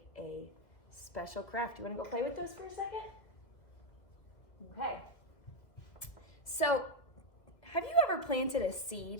a special craft. You wanna go play with those for a second? Okay. So, have you ever planted a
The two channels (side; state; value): right; late; 2.1 ms